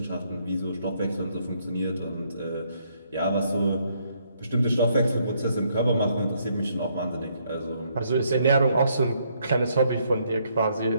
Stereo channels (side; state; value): both; inverted; correlation -0.71